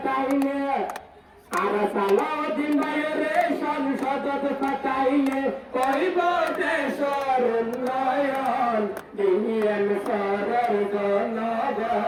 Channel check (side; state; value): both; identical; correlation 1.00